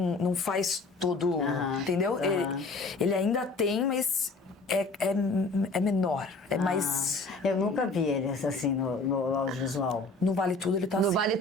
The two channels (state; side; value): quieter; right; 3.4 dB